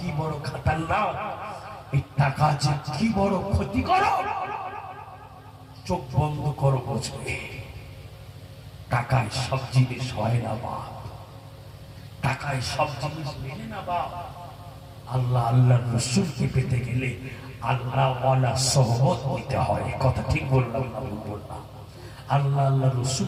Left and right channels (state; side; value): identical; both; correlation 1.00